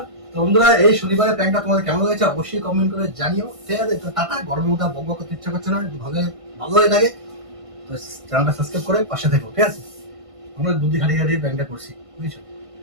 তো বন্ধুরা এই শনিবারের প্যান্টটা তোমাদের কেমন লাগছে অবশ্যই কমেন্ট করে জানিও, ঠিক আছে? তো টাটা, গরমের মধ্যে বক বক করতে ইচ্ছা করছে না, ভালো ভালো হয়ে থাকে তো চ্যানেলটা সাবস্ক্রাইব করে পাশে থেকো, ঠিক আছে? আমরা বুদ্ধি খাটিয়ে খাটিয়ে প্যান্টটা করছি, বুঝছো?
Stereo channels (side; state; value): left; late; 1.5 ms